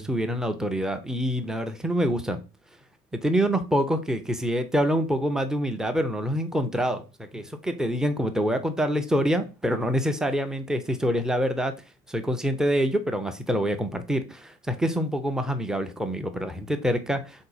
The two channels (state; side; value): normal; both; correlation 0.75